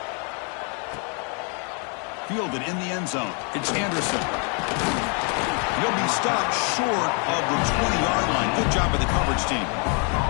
Fielded in the end zone. It's Anderson. He'll be stopped short of the 20-yard line. Good job by the coverage team.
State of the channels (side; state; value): right; quieter; 38.1 dB